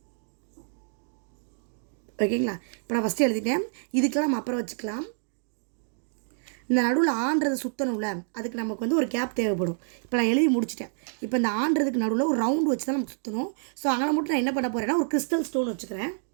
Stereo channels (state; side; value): silent; left; digital silence